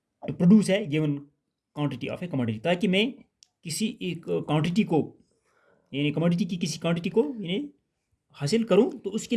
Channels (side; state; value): both; identical; correlation 1.00